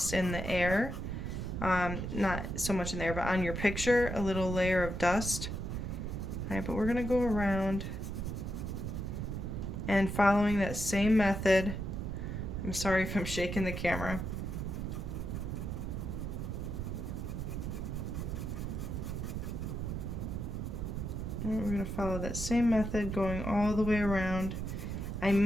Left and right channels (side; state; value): right; noise; rumble, 4 dB below the sound